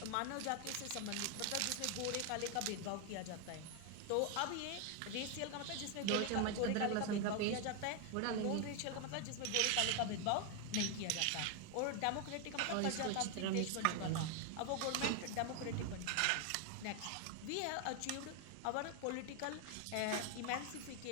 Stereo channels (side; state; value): both; different; correlation 0.01